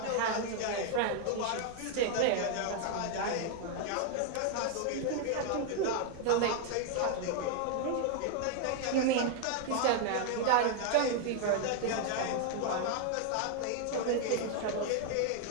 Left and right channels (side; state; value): both; different; correlation 0.00